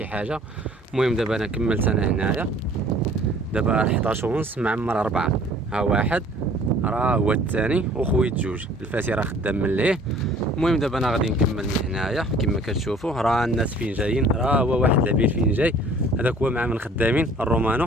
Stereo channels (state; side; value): normal; both; correlation 0.53